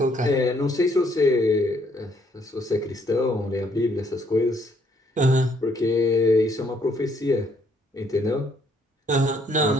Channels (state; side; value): normal; both; correlation 0.68